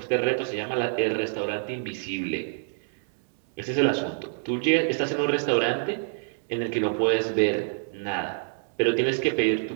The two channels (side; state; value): left; silent; digital silence